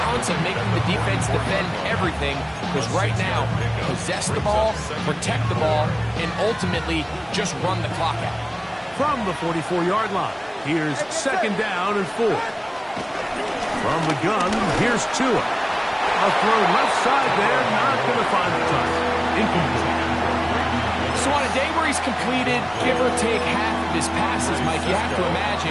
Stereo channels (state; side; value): identical; both; correlation 1.00